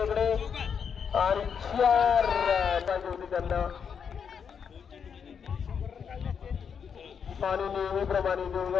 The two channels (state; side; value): quieter; right; 6.9 dB